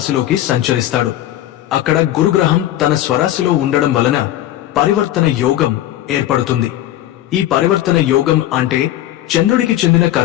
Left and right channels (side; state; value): right; quieter; 13.4 dB